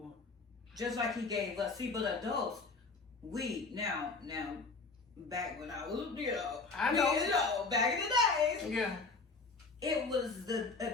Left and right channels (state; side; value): quieter; right; 4.0 dB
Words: Just like He gave us. See, but adults, we now back when I was, back in the days, it was